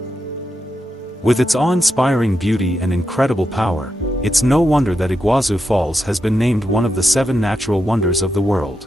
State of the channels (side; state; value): both; normal; correlation 0.86